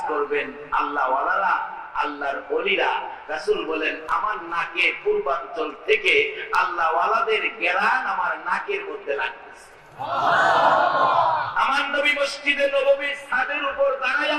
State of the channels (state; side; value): identical; both; correlation 1.00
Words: করবেন আল্লাহ ওয়ালারা, আল্লাহর ওলিরা। রাসূল বলেন, আমার নাকে পূর্বাঞ্চল থেকে আল্লাহ ওয়ালাদের ঘেরান আমার নাকের মধ্যে লাগতেছে। আমার নবী মসজিদে নববীর ছাদের উপর